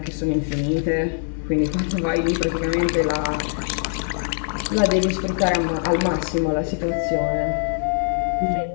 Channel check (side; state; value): right; silent; digital silence